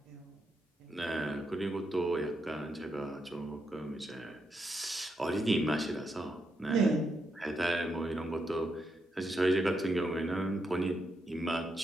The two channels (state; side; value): normal; both; correlation 0.82